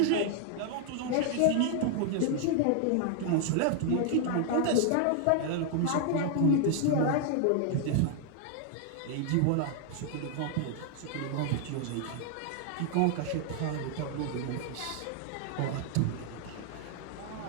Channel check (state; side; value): different; both; correlation 0.00